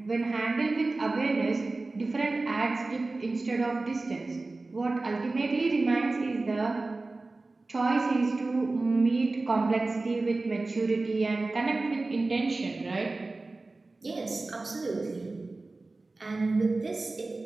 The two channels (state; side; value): quieter; left; 3.3 dB